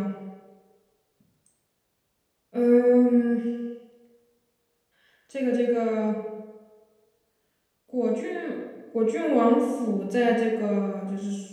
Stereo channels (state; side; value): identical; both; correlation 1.00